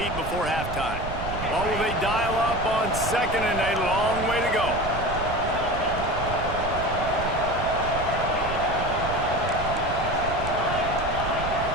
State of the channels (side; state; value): right; noise; rumble, 7 dB below the sound